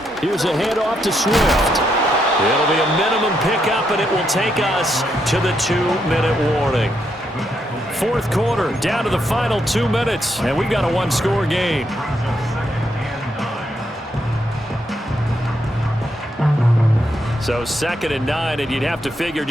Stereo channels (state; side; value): normal; both; correlation 0.78